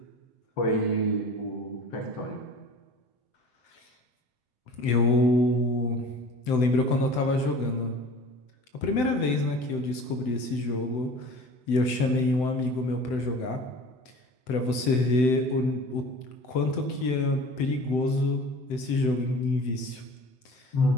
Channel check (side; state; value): right; late; 7.8 ms